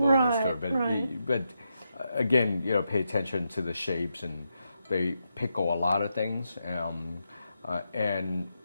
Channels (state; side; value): inverted; both; correlation -0.85